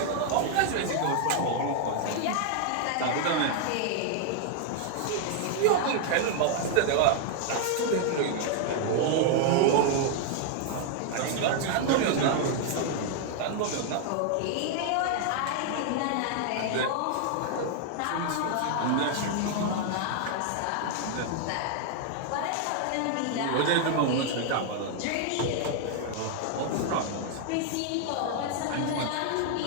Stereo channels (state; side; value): different; both; correlation 0.00